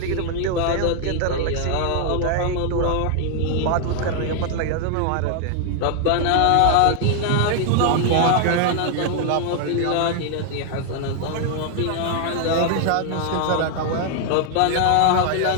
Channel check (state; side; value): different; both; correlation 0.00